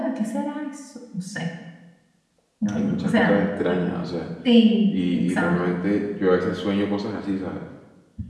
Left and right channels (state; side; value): identical; both; correlation 1.00